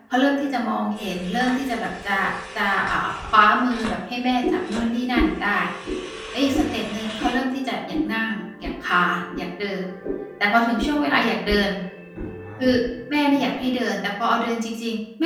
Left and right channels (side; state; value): both; identical; correlation 1.00